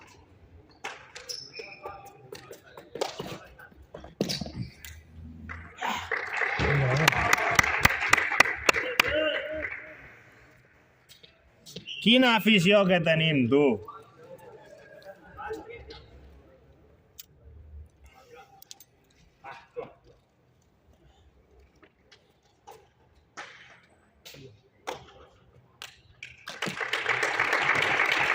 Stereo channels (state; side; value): identical; both; correlation 1.00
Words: Quina afició que tenim, tu.